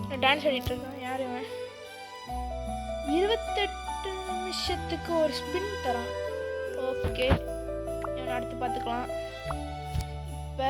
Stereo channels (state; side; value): identical; both; correlation 1.00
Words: டான்ஸ் ஆடிட்டு இருக்கான். யார் இவன்? 28 நிமிஷத்துக்கு ஒரு ஸ்பின் தரான். ஓகே, இவன் அடுத்து பார்த்துக்கலாம். இப்போ